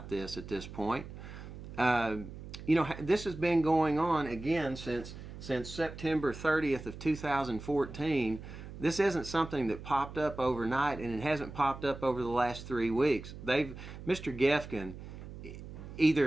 this at this point. This has been going on again since September 30th of 2014. This isn't something that popped up overnight, and it hasn't popped up over the last 3 weeks. Mr. Gifkin,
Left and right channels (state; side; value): noise; right; hum, 12 dB below the sound